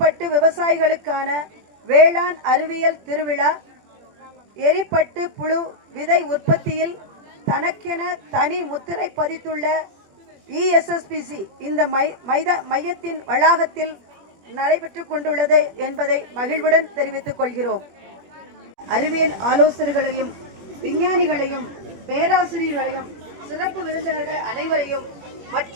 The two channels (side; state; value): left; late; 21 ms